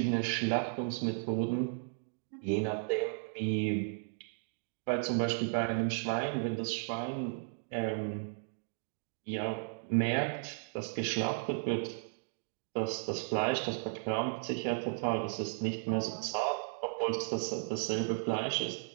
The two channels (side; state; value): left; silent; digital silence